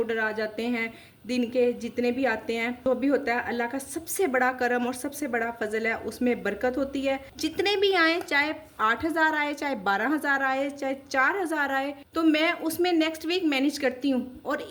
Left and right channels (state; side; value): identical; both; correlation 1.00